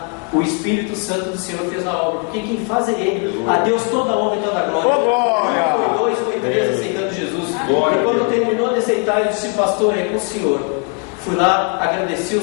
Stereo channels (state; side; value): quieter; right; 34.4 dB